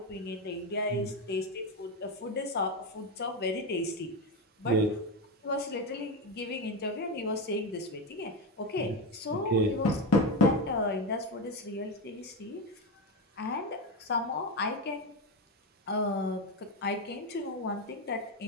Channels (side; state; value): both; normal; correlation 0.14